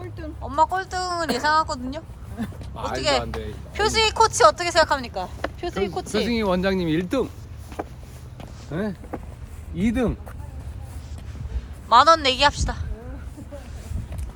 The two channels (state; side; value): identical; both; correlation 1.00